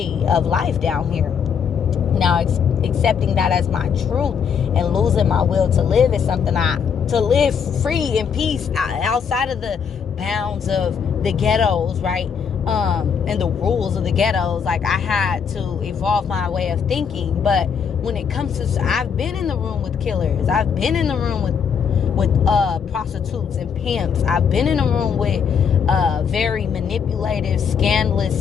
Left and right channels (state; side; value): quieter; right; 6.9 dB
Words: of life down here. Now, accepting that as my truth and losing my will to live is something to live free in peace outside of the bounds of the ghettos, right? and the rules of the ghettos. Like, I had to evolve my way of thinking. But when it comes to, I've been in the room with killers, I've been in the room with prostitutes and pimps, I've been in a room with very manipulative,